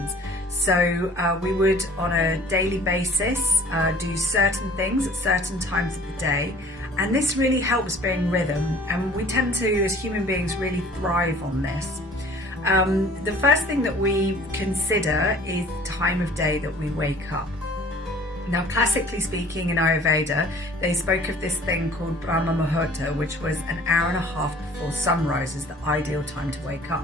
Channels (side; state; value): both; normal; correlation 0.49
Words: So we would, on a daily basis, do certain things at certain times of the day, and this really helps bring rhythm, and we tend to, as human beings, really thrive on this. The first thing that we consider is the time of day that we wake up. Now, classically speaking, in Ayurveda, they spoke of this thing called Brahmamuhurta, which was an hour and a half before sunrise is the ideal time to wake